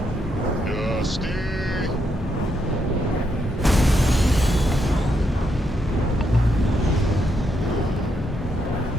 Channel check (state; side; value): normal; both; correlation 0.79